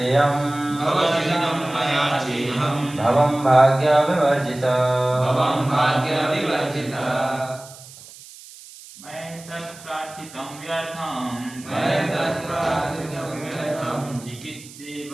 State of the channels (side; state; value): right; noise; hiss, 18 dB below the sound